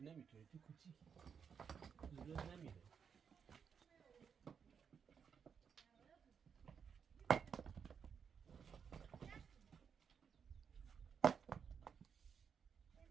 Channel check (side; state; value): left; quieter; 6.8 dB